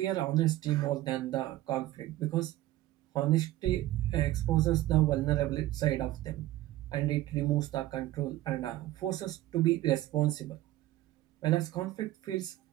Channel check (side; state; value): left; quieter; 15.6 dB